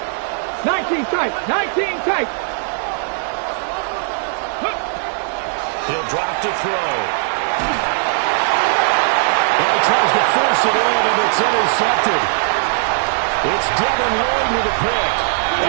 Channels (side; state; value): left; silent; 59 dB below the other